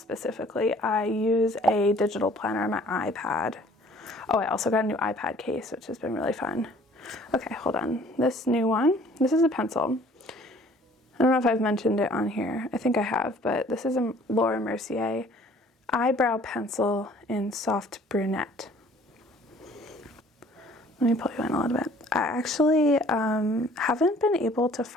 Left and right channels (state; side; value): normal; both; correlation 0.54